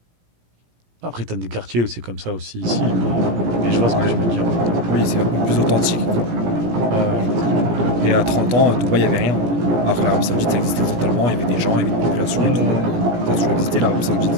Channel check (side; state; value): left; late; 17 ms